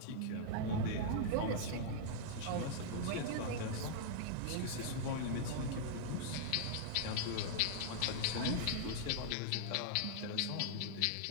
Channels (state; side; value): different; both; correlation -0.01